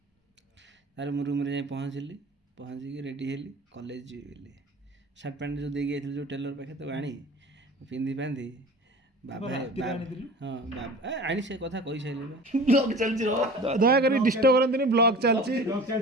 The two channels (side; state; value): both; normal; correlation 0.39